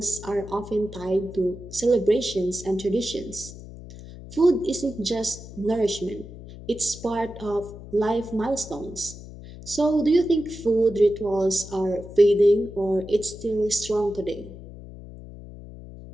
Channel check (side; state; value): left; noise; hum, 15 dB below the sound